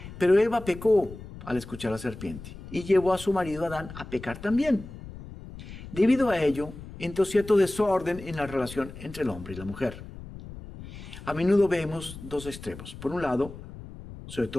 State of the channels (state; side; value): noise; left; rumble, 14 dB below the sound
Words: Pero Eva pecó al escuchar a la serpiente y llevó a su marido Adán a pecar también. Debido a ello, entró cierto desorden en la relación entre el hombre y la mujer. A menudo vemos dos extremos. Por un lado, sobre